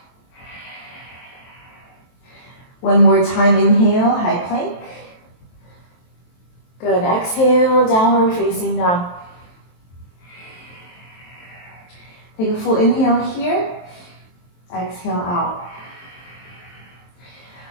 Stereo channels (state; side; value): late; right; 23 ms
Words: One more time, inhale, high plank. Good, exhale, downward facing dog. Take a full inhale here, exhale out.